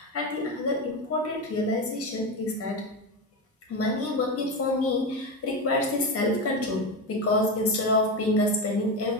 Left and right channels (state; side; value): normal; both; correlation 0.17